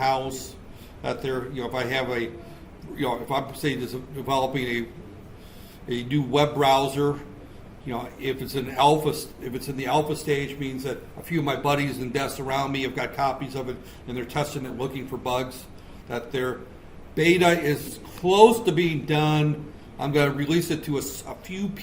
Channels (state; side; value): identical; both; correlation 1.00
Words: That there, if I have a, if I'm say developing a new web browser, if it's in the alpha stage, means that a few of my buddies and desks around me have got copies of it and they're testing it, looking for bugs. That their beta is close to being done. I'm going to release it to a few